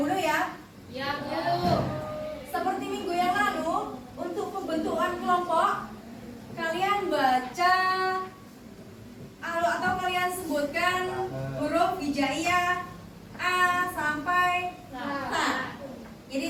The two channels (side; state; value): both; identical; correlation 1.00